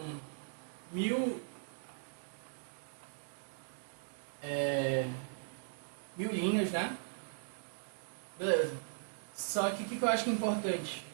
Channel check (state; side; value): silent; left; digital silence